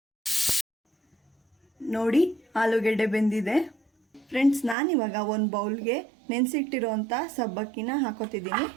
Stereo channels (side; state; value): left; drops out; at 4.8 s